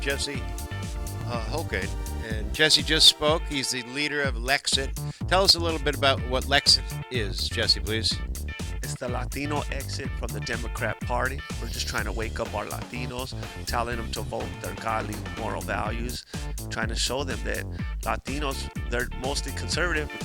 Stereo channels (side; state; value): both; identical; correlation 1.00